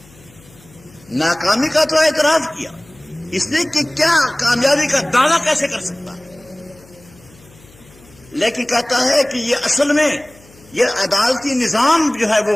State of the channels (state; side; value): noise; left; hum, 26 dB below the sound